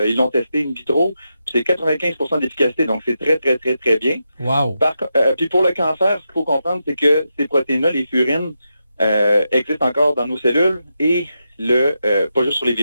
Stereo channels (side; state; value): both; inverted; correlation -0.87